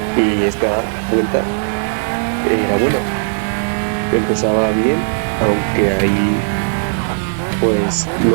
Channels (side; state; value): left; silent; 68 dB below the other